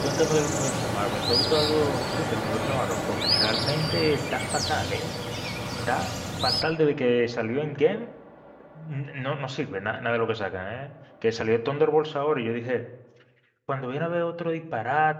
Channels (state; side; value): identical; both; correlation 1.00